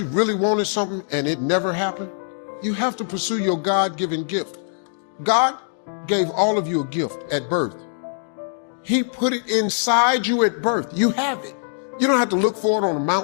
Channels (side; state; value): right; silent; digital silence